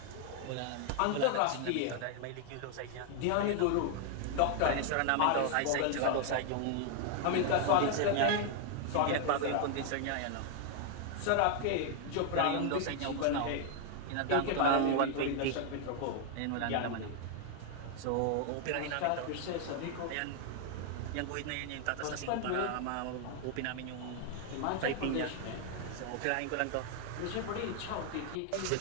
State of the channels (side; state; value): both; different; correlation 0.00